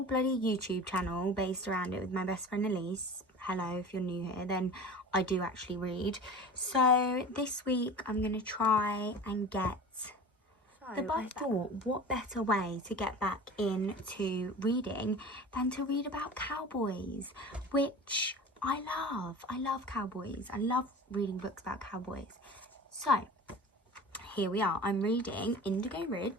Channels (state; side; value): normal; both; correlation 0.37